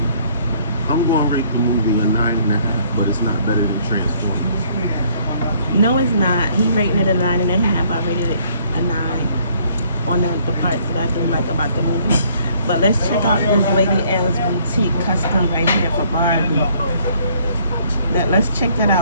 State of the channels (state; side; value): inverted; both; correlation -0.63